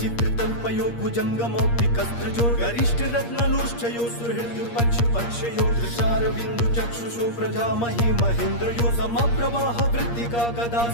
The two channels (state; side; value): late; right; 8.5 ms